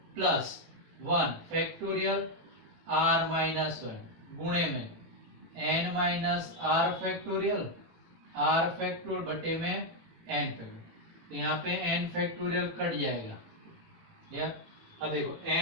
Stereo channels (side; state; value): left; late; 18 ms